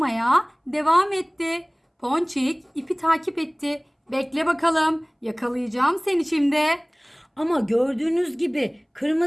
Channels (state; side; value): identical; both; correlation 1.00